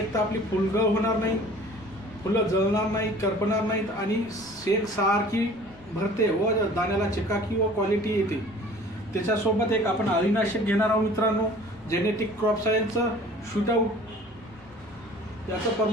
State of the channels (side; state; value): left; noise; rumble, 24 dB below the sound